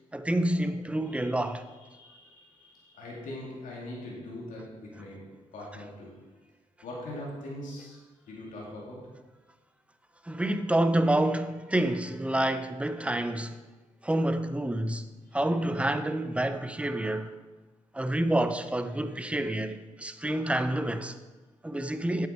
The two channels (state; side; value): normal; both; correlation 0.90